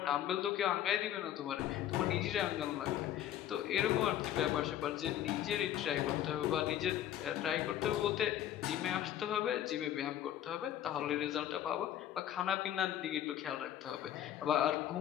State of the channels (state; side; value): quieter; right; 11.5 dB